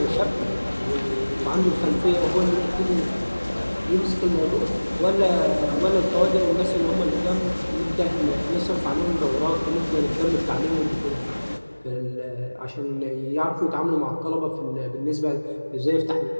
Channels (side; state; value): both; inverted; correlation -1.00